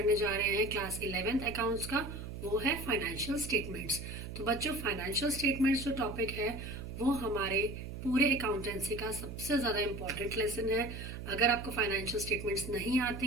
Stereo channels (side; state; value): right; noise; hum, 8 dB below the sound